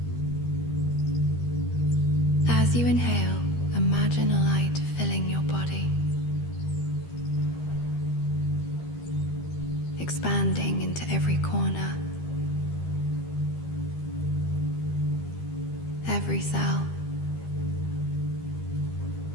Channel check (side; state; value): right; late; 13 ms